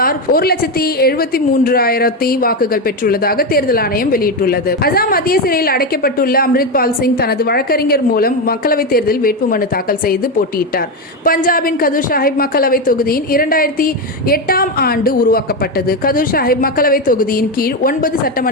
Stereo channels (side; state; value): both; normal; correlation 0.12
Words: 1,73,000 வாக்குகள் பெற்றுள்ளதாக தேர்தல் ஆணையம் வெளியிட்டுள்ளது. அசாம் மத்திய சிறையில் அடைக்கப்பட்டுள்ள அம்ரித் பால் சிங் தனது வழக்கறிஞர் மூலம் மக்களவைத் தேர்தலில் வேட்புமனு தாக்கல் செய்து போட்டியிட்டார். பஞ்சாபின் கதூர் சாஹிப் மக்களவை தொகுதியின் 2008ஆம் ஆண்டு உருவாக்கப்பட்டது. கதூர் சாஹிப் மக்களவை தொகுதியின் கீழ் 9